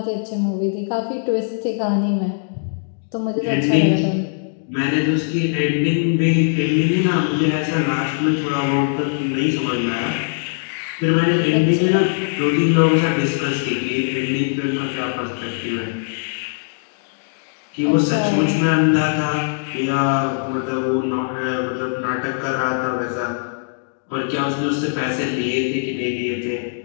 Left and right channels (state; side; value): silent; right; digital silence